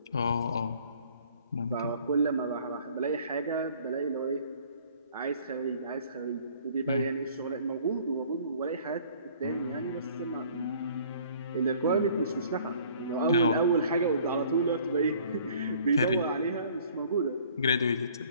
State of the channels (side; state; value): both; inverted; correlation -0.55